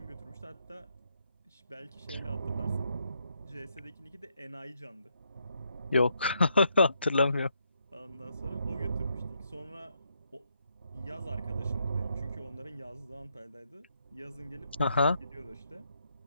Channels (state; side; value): inverted; both; correlation -0.77